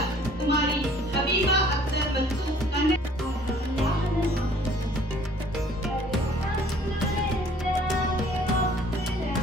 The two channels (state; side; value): normal; both; correlation 0.55